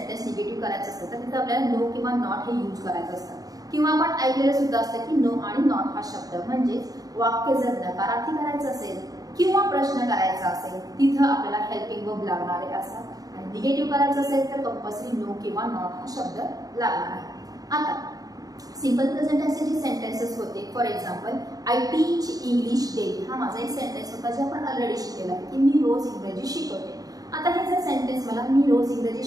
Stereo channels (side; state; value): left; late; 0.18 ms